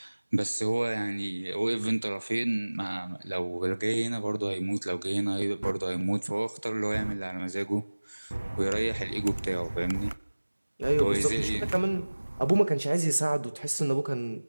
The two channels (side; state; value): both; inverted; correlation -1.00